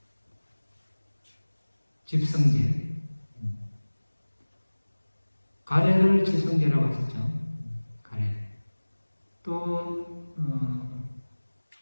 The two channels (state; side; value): inverted; both; correlation -1.00